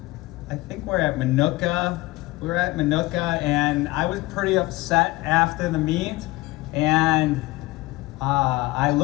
I think we're at Minooka. We were at Minooka, and I was pretty upset after the meet. And I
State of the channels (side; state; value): right; quieter; 20.4 dB